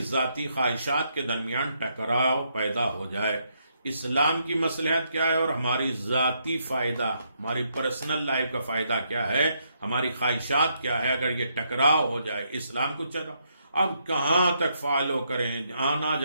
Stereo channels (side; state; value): both; inverted; correlation -0.76